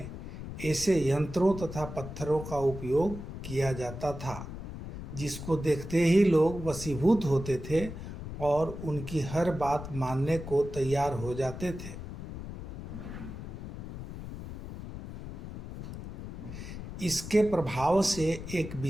ऐसे यंत्रों तथा पत्थरों का उपयोग किया जाता था जिसको देखते ही लोग वशीभूत होते थे और उनकी हर बात मानने को तैयार हो जाते थे। इसके प्रभाव से एक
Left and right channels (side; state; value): left; noise; rumble, 10 dB below the sound